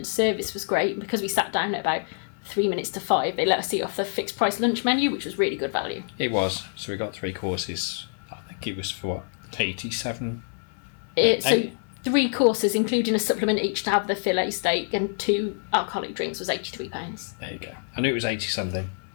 service was great. Because we sat down at about 3 minutes to 5, they let us eat off the fixed price lunch menu, which was really good value. It was. So we got 3 courses. I think it was for what, 87? So 3 courses, including a supplement each to have the fillet steak and 2 alcoholic drinks, was £83. There you go. I knew it was 80 something.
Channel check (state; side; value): silent; right; 59 dB below the other